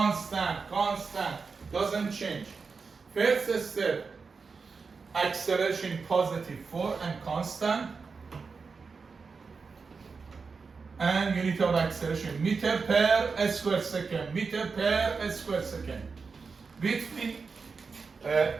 constant, doesn't change. First step, acceleration positive 4 and constant. And unit of acceleration, meter per square second, meter per square second. Between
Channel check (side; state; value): left; quieter; 4.9 dB